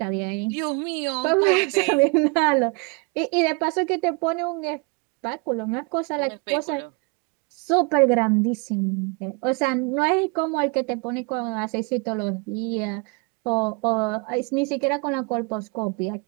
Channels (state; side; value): quieter; left; 31.0 dB